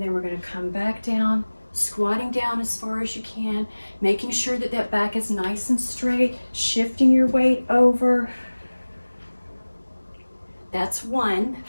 then we're going to come back down, squatting down as far as you can, making sure that that back is nice and straight, shifting your weight over. That's one.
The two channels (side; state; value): both; inverted; correlation -1.00